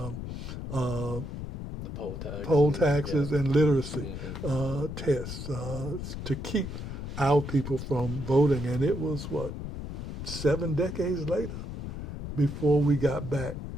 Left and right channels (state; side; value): noise; left; rumble, 6 dB below the sound